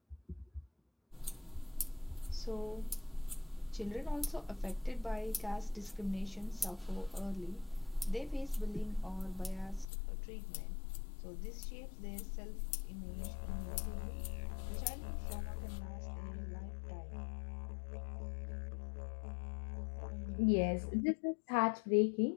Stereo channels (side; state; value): right; drops out; at 9.9 s